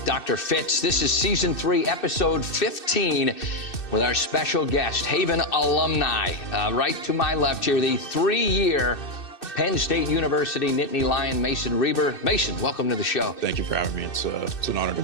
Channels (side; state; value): right; late; 2.6 ms